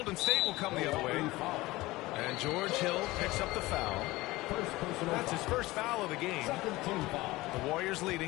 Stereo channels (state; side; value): quieter; right; 19.4 dB